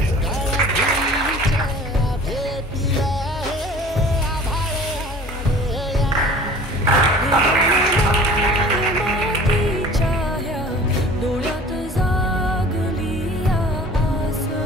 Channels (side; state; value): both; normal; correlation 0.45